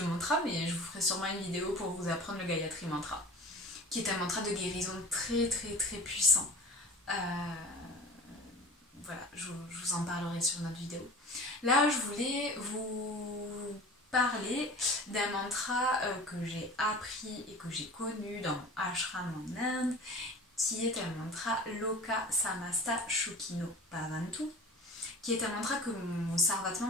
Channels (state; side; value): normal; both; correlation 0.39